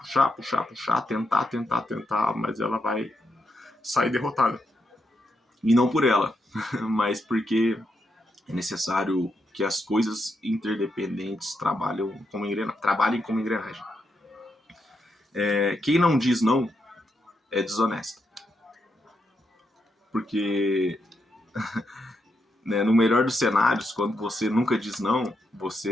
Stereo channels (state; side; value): normal; both; correlation 0.82